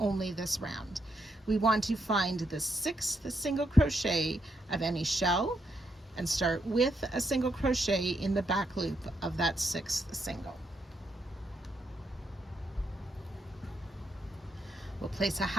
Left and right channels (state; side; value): normal; both; correlation 0.79